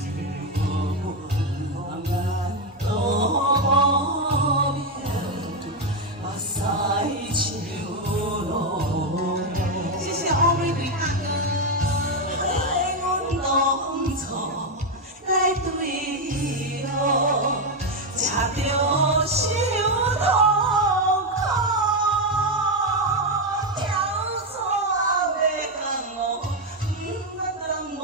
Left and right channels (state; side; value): normal; both; correlation 0.06